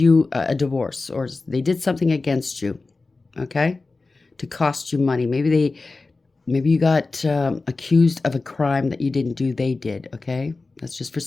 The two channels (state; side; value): quieter; right; 3.6 dB